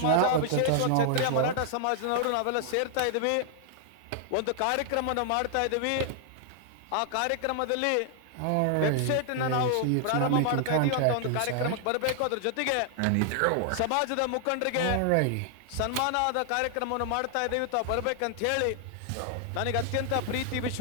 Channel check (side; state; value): both; different; correlation 0.00